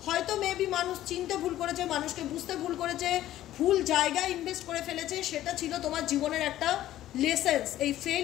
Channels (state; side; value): quieter; right; 13.6 dB